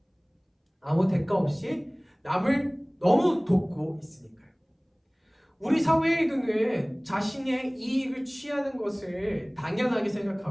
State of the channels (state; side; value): identical; both; correlation 1.00